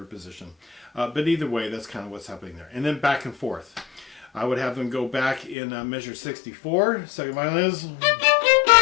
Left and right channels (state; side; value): drops out; right; at 5.6 s